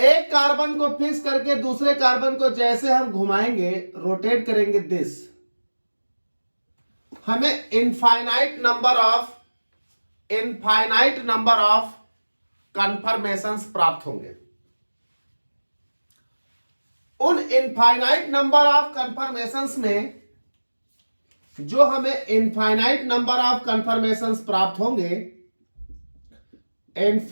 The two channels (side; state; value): both; inverted; correlation -1.00